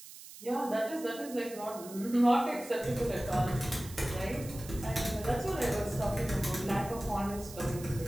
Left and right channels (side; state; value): right; noise; hiss, 16 dB below the sound